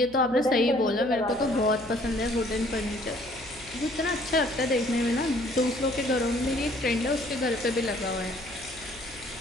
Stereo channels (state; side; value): noise; left; hum, 22 dB below the sound